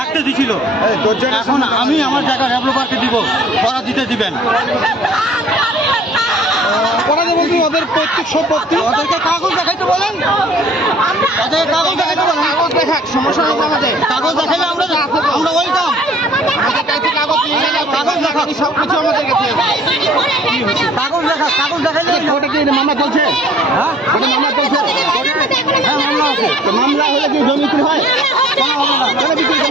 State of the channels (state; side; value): normal; both; correlation 0.53